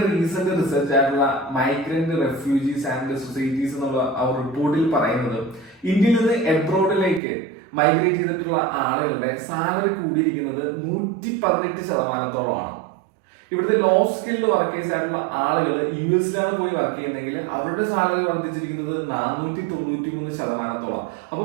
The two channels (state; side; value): drops out; left; at 7.2 s